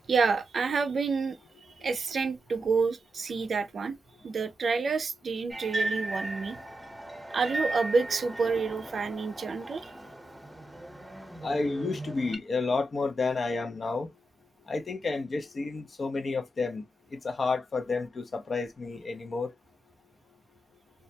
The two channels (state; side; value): normal; both; correlation 0.87